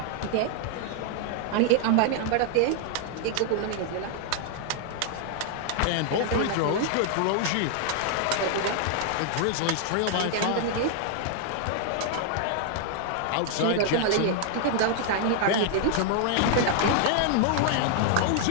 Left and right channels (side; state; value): both; different; correlation 0.00